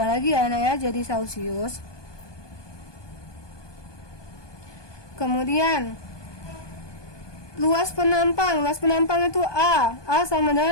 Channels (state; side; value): late; right; 1.2 ms